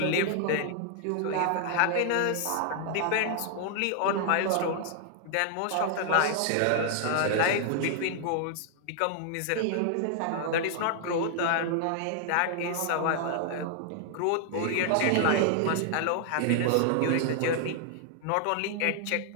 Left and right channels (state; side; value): different; both; correlation -0.01